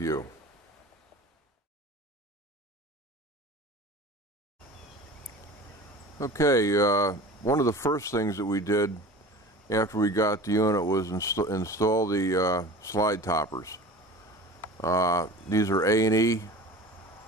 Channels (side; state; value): both; normal; correlation 0.38